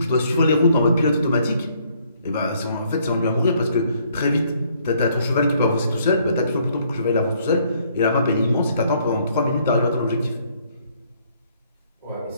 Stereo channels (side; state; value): both; inverted; correlation -0.67